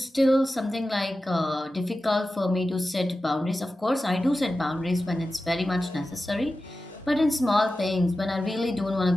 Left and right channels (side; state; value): both; normal; correlation 0.94